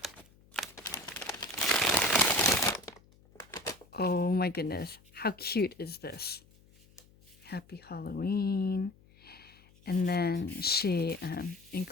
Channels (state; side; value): noise; left; hum, 28 dB below the sound